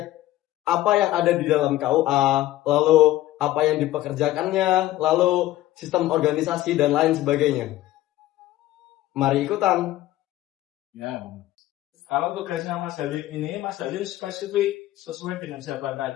apa yang ada di dalam KUA, lalu apa yang dipekerjakannya, lalu sistem organisasi dan lain sebagainya. Mari ikutan. Ya, kalau tugasnya Mas Halim ini, Mas Halim spesifik sesuai dengan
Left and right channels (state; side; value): quieter; right; 15.4 dB